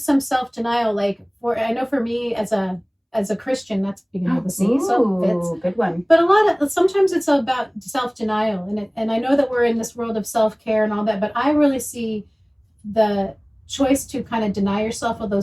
self-denial. I know for me as a Christian, that's beginning with a C, so it fits. ooh, good one. But sometimes it's about self-denial, and I know that we're in this world of self-care and all that, but I really see the choice to kind of deny yourself of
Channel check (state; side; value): identical; both; correlation 1.00